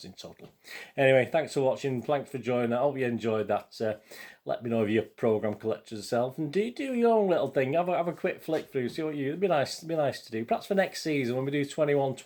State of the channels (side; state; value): both; identical; correlation 1.00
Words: in total. Anyway, thanks for watching, thanks for joining. I hope you enjoyed that. Let me know if you're a programme collector yourself, and do your own little thing. Have a quick flick through, see what it'd be nice to do. Perhaps for next season when we do